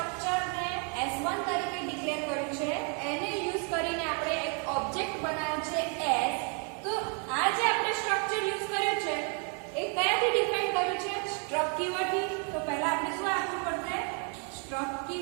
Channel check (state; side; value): quieter; left; 38.7 dB